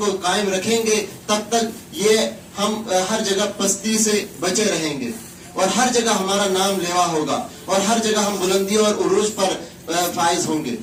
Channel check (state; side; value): identical; both; correlation 1.00